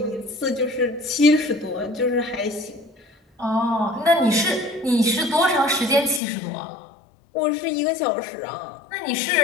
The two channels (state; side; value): drops out; right; at 6.2 s